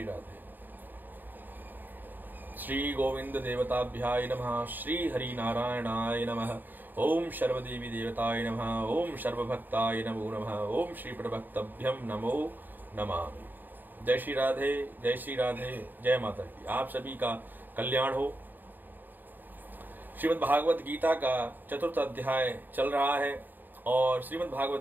राधे। श्री गोविंद देवताभ्याय नमः, श्री हरि नारायणाय नमः, ओम सर्वदेवी देवताय नमः, ओम सर्वभक्ताय नमो नमः, ओम श्री प्रभक्तभ्यम नमो नमः। जय श्री राधे, जय श्री राधे, जय माता की। आप सभी का कल्याण हो। श्रीमद् भागवत गीता का 4th अध्याय चल रहा है और श्रीमद्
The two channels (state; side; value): late; left; 0.090 ms